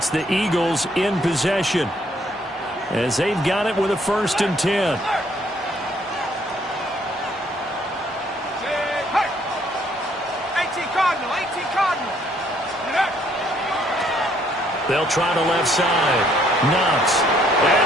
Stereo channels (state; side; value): normal; both; correlation 0.66